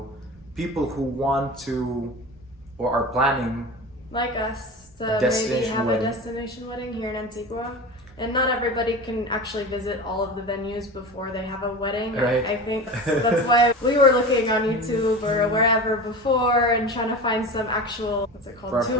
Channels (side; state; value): both; normal; correlation 0.30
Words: people who want to or are planning like us to maybe have a destination wedding here in Antigua. And not everybody can actually visit all of the venues before they have a wedding. Right. I think that's why we were looking on YouTube or wherever before and trying to find some actual,